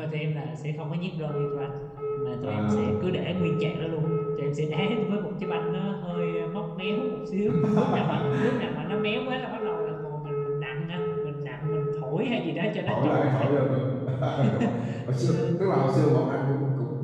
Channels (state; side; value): identical; both; correlation 1.00